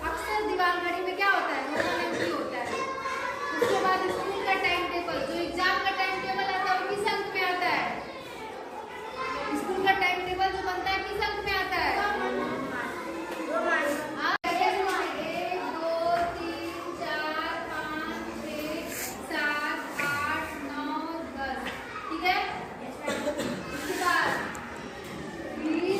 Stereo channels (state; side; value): identical; both; correlation 1.00